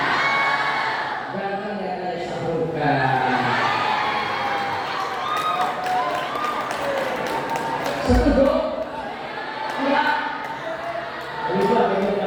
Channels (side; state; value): both; identical; correlation 1.00